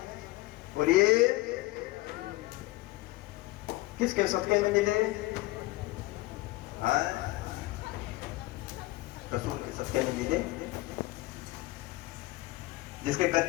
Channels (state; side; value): quieter; right; 20.0 dB